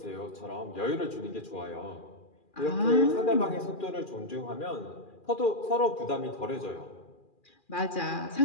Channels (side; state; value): right; late; 2.4 ms